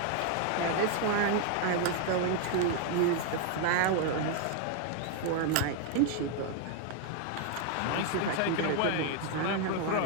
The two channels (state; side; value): different; both; correlation 0.00